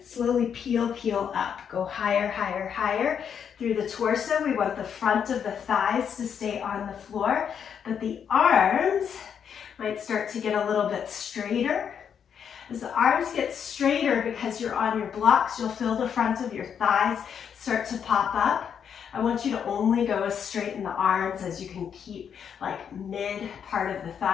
Slowly peel up. Go higher, higher, higher. Through the torso, we want the front of the thighs to stay on the floor, but the arms might start to get a little bit straighter. As the arms get straighter because you're on your blocks, you'll feel the front of your thighs start to pop up. I want you to only go as straight in the arms as you can keep like mid part of the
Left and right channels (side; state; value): right; quieter; 7.8 dB